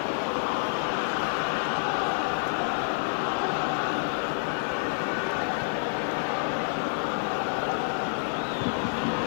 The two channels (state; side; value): silent; right; digital silence